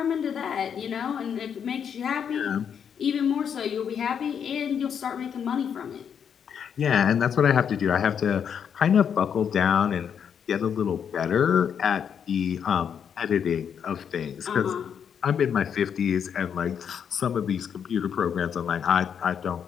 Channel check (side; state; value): right; quieter; 7.8 dB